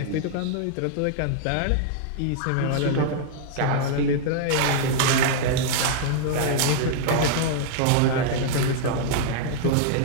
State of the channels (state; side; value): different; both; correlation -0.01